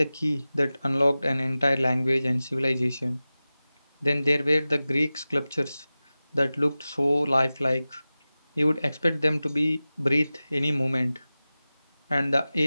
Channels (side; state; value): both; inverted; correlation -0.96